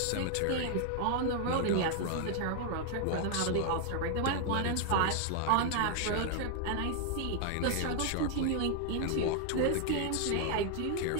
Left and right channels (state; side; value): different; both; correlation 0.00